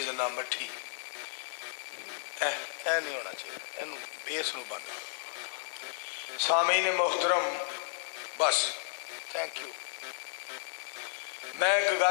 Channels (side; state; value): right; silent; 56 dB below the other